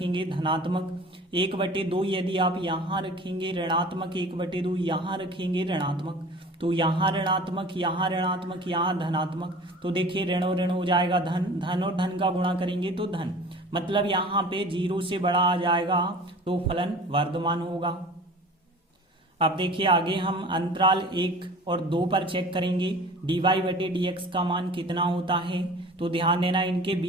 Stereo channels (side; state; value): both; normal; correlation 0.42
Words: धनात्मक, 1/2 यदि आप यहाँ रखेंगे ऋणात्मक, 1/2 यहाँ रखेंगे ऋणात्मक, तो यहाँ ऋणात्मक, यहाँ ऋणात्मक, यहाँ धनात्मक, तो देखिए ऋण और ऋण हो जाएगा धन, धन और धन का गुणा करेंगे तो धन, मतलब यहाँ पे 0 से बड़ा आ जाएगा तो फलन वर्धमान होगा। अब देखिए आगे हम अंतराल 1 और 2 पर चेक करेंगे dy/dx का मान कितना होता है। तो ध्यान देना इनके